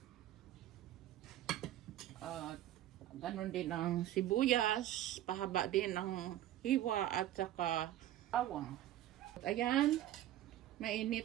ganon din ang sibuyas, pahaba din ang hiwa at saka bawang. Ayan,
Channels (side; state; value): left; quieter; 13.2 dB